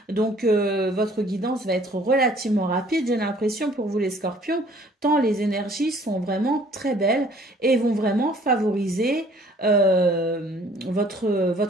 Donc, votre guidance va être relativement rapide, j'ai l'impression, pour vous les scorpions, tant les énergies sont vraiment très belles et vont vraiment favoriser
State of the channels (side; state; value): both; normal; correlation 0.56